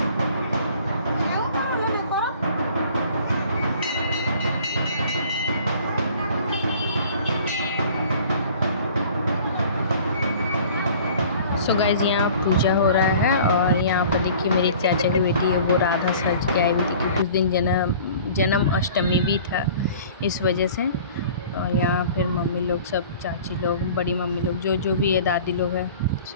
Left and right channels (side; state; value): both; inverted; correlation -0.48